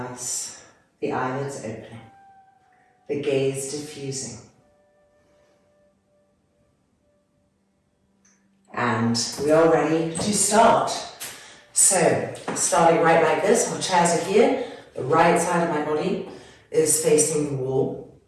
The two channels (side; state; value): both; identical; correlation 1.00